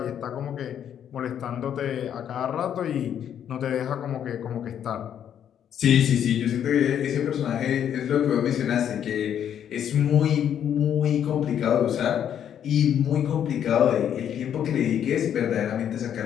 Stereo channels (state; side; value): quieter; right; 9.4 dB